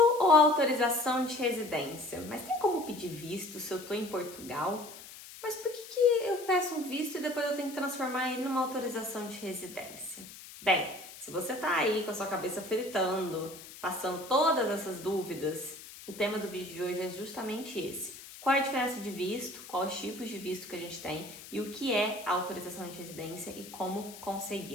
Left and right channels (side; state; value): left; noise; hiss, 15 dB below the sound